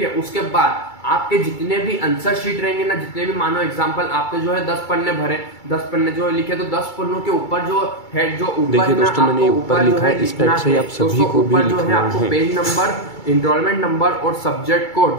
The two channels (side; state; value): right; late; 2.3 ms